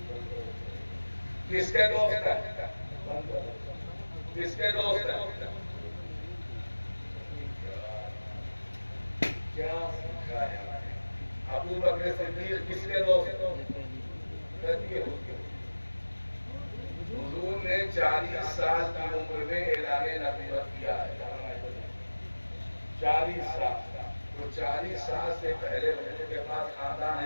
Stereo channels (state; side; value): inverted; both; correlation -1.00